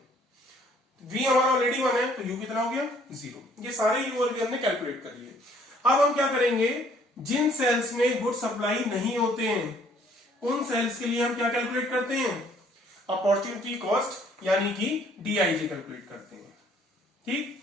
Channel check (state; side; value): normal; both; correlation 0.61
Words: V हमारा ऑलरेडी 1 है तो U कितना हो गया 0। ये सारे U और V हमने कैलकुलेट कर लिए। अब हम क्या करेंगे? जिन सेल्स में गुड सप्लाई नहीं होते हैं उन सेल्स के लिए हम क्या कैलकुलेट करते हैं? अपॉर्चुनिटी कॉस्ट यानी कि DIJ कैलकुलेट करते हैं। ठीक।